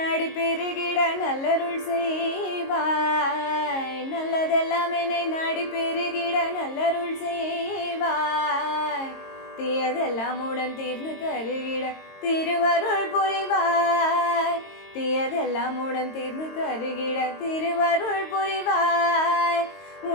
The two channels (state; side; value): late; right; 22 ms